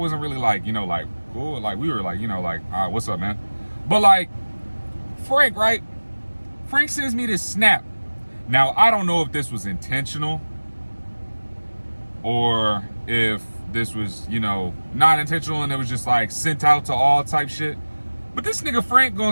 really like, like, cool. Like, we were like, what's up, man? But like, Frank, right? Frank sends me this Snap. Now, I don't know if this was intentional or if this was, not intentional and it was just like sent out to all type shit. But this nigga Frank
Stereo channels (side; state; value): both; inverted; correlation -1.00